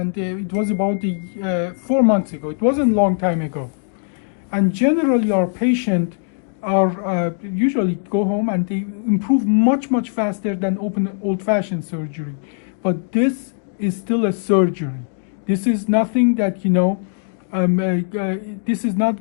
it was about 4 months ago. It wasn't a long time ago. And generally our patients are usually go home and they improve much faster than open old-fashioned surgery. But this is still a surgery. This is nothing that, this is not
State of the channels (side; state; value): right; silent; 66 dB below the other